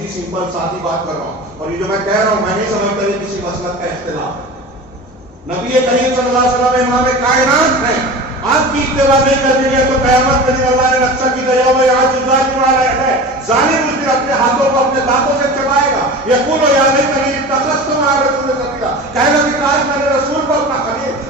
سمپل سادی بات کر رہا ہوں. اور یہ جو میں کہہ رہا ہوں میں نہیں سمجھتا یہ کسی مسلک کا اختلاف. نبی کریم صلی اللہ علیہ وسلم امام کائنات ہیں. آپ کی اتباع نہیں کرنے گے تو قیامت کے دن اللہ نے نقشہ کی طرح میں آج ظالم والا ہے، ظالم اس دن اپنے ہاتھوں کو اپنے دانتوں سے چبائے گا. یقول یا لیتنی اتخذت مع الرسول سبیلا. کہے گا کہ کاش میں نے رسول کو اپنا خلیل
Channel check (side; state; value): both; normal; correlation 0.34